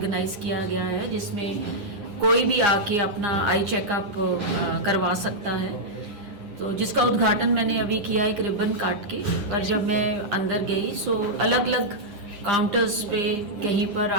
किया गया है, जिसमें कोई भी आके अपना आई चेकअप करवा सकता है, तो जिसका उद्घाटन मैंने अभी किया एक रिबन काट के। पर जब मैं अंदर गई सो अलग अलग काउंटर्स पे कहीं पर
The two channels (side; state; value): left; late; 9.8 ms